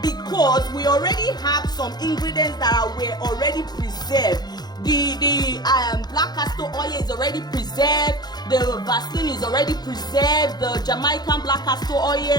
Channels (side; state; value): right; late; 0.20 ms